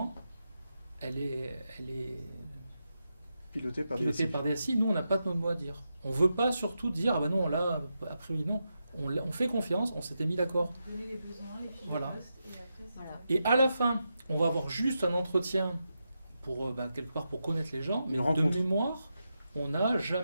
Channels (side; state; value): both; inverted; correlation -0.87